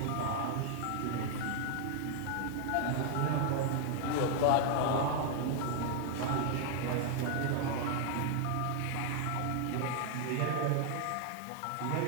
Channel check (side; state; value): both; different; correlation 0.00